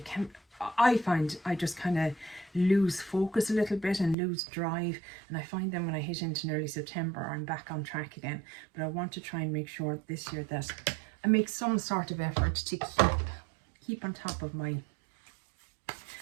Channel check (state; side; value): drops out; left; at 4.2 s